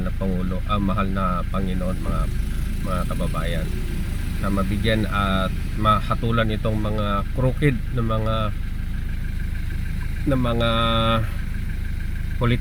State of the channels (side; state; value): both; identical; correlation 1.00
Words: na Pangulo, mahal na Panginoon mga kababayan, na mabigyan at mahatulan itong mga crooked na mga